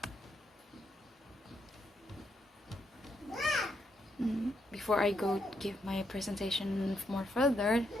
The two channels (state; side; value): normal; both; correlation 0.78